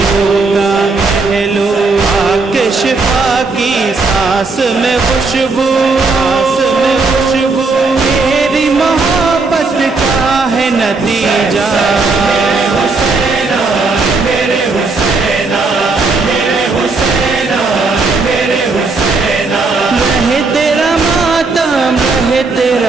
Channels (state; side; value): quieter; left; 3.9 dB